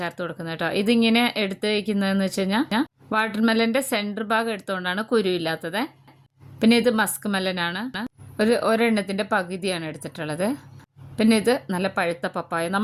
കൊടുക്കുന്നത് കേട്ടോ. ഇതിങ്ങനെ എടുത്ത് വയ്ക്കുന്നതെന്ന് വെച്ച് കഴിഞ്ഞാൽ വാട്ടർമെലൻ്റെ സെൻറ്റർ ഭാഗം എടുത്തുകൊണ്ടാണ് കുരുവില്ലാത്തത്. പിന്നെ ഇത് മസ്ക് മെലനാണ്, ഒരെണ്ണത്തിൻ്റെ പകുതിയാണ് എടുത്തിട്ടുള്ളത്. പിന്നെ ഇത് നല്ല പഴുത്ത പപ്പായ.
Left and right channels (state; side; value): identical; both; correlation 1.00